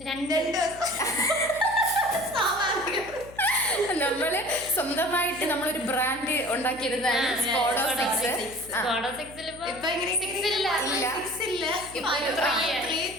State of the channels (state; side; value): noise; left; hum, 19 dB below the sound